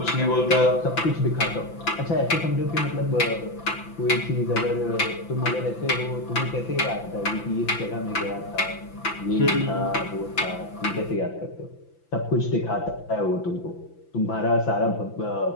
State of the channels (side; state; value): right; late; 5.9 ms